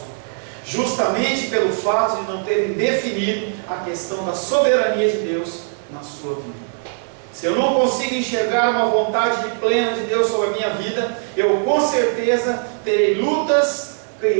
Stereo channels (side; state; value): left; silent; digital silence